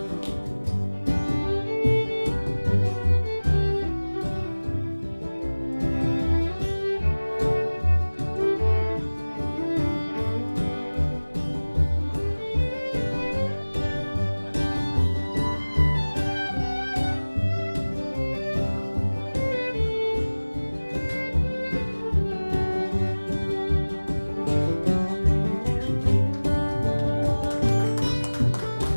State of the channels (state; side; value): inverted; both; correlation -1.00